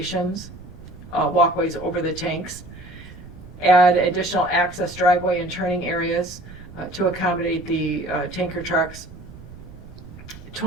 walkways over the tanks. Add additional access driveway and turning areas to accommodate the tanker trucks.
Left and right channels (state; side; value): noise; right; rumble, 16 dB below the sound